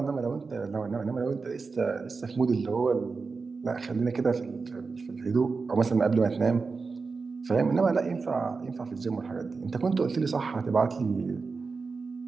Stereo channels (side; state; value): left; quieter; 4.5 dB